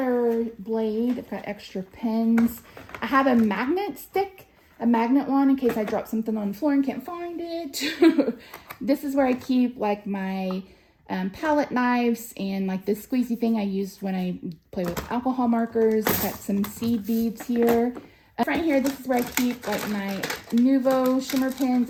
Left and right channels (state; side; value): identical; both; correlation 1.00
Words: blade. I've got extra pens. I have a magnet stick, a magnet one in case I drop something on the floor and can't find it. This is where I keep like my palette knives and like this squeezy thing I use when I play with alcohol markers. I've got some seed beads here. Right here, this is where I keep like my Nuvo shimmer